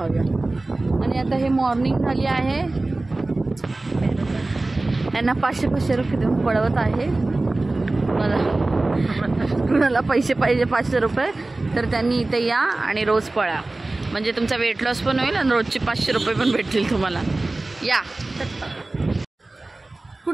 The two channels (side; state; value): left; quieter; 3.0 dB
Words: आणि आता हे मॉर्निंग झाली आहे, त्यांना 500 रुपये देऊन पळवत आहे. मला कुणाला पैसे पाहिजे 500 रुपये तर त्यांनी इथे या आणि रोज पळा, म्हणजे तुमचा वेट लॉस पण होईल आणि रोजचे 500 रुपये पण भेटतील तुम्हाला. या,